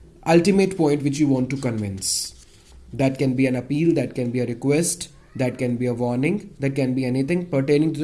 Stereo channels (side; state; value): both; identical; correlation 1.00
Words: ultimate point which you want to convince. That can be an appeal, that can be a request, that can be a warning, that can be anything pertaining